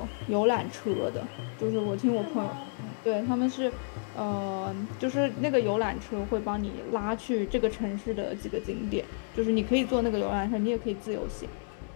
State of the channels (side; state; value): right; silent; digital silence